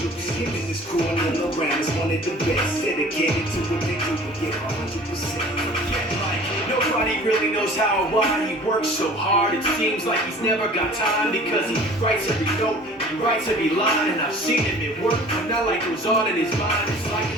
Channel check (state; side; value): normal; both; correlation 0.47